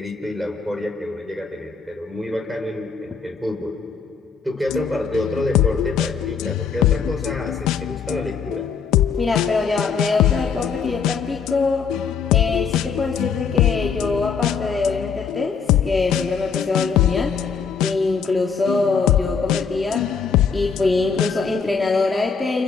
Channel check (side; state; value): right; quieter; 5.9 dB